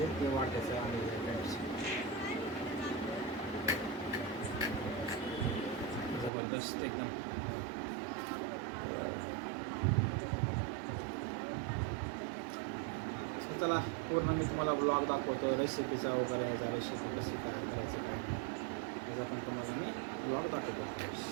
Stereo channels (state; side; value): drops out; left; at 6.3 s